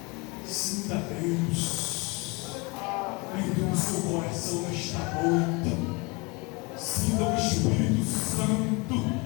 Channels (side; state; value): right; quieter; 27.9 dB